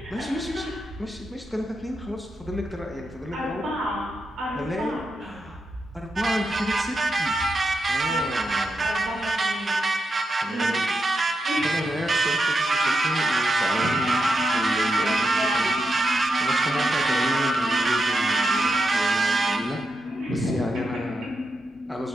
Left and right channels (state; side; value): normal; both; correlation 0.86